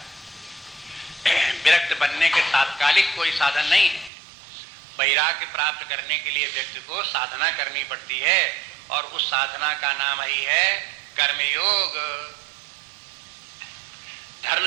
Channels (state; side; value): drops out; left; at 4.1 s